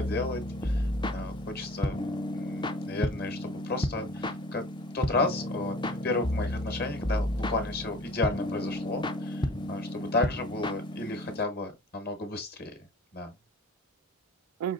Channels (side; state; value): both; normal; correlation 0.45